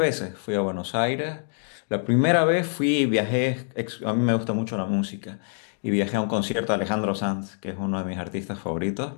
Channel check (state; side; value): silent; right; digital silence